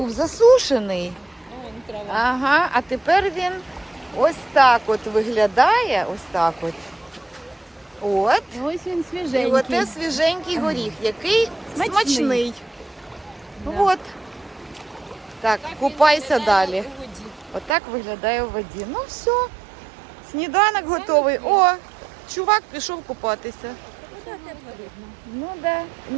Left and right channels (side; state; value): left; drops out; at 17.8 s